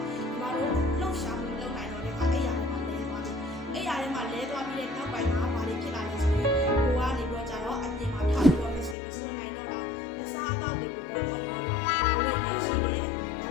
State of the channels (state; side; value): drops out; right; at 9.0 s